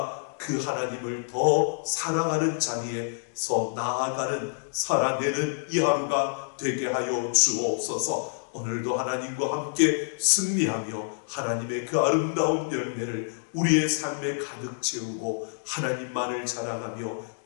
그 하나님을 더 사랑하는 자리에서 나아가는 살아내는 이 하루가 되게 하여 주옵소서. 오늘도 하나님과 함께 승리하며 하나님의 그 아름다운 열매를 우리의 삶에 가득 채우고 하나님만을 자랑하며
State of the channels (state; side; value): silent; right; digital silence